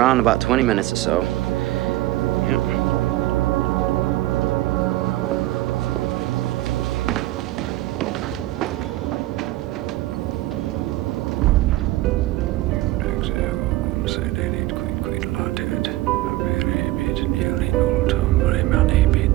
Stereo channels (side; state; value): left; quieter; 16.9 dB